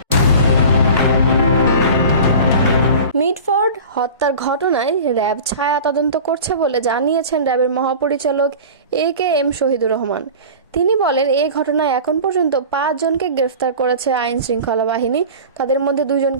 মিটফোর্ড হত্যার ঘটনায় র্যাব ছায়া তদন্ত করছে বলে জানিয়েছেন র্যাবের মহাপরিচালক AKM শহীদুর রহমান। তিনি বলেন, এই ঘটনায় এখন পর্যন্ত 5 জনকে গ্রেফতার করেছে আইন শৃঙ্খলা বাহিনী। তাদের মধ্যে 2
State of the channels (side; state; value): both; inverted; correlation -0.37